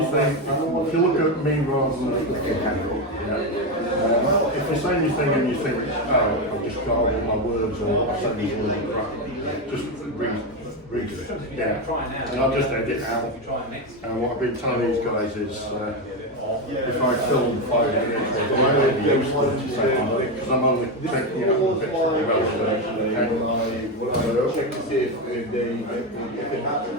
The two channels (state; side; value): normal; both; correlation 0.11